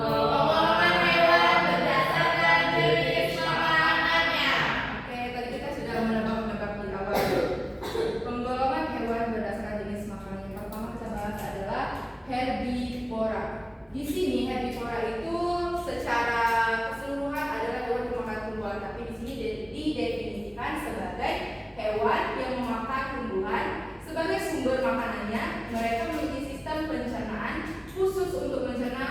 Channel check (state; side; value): identical; both; correlation 1.00